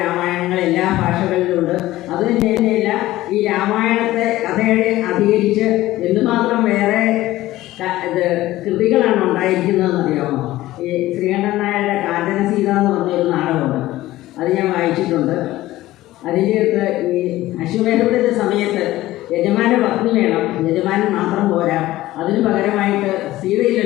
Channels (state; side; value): quieter; right; 16.2 dB